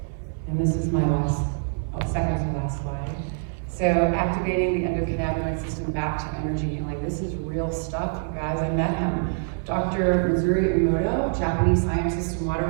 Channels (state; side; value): silent; left; 62 dB below the other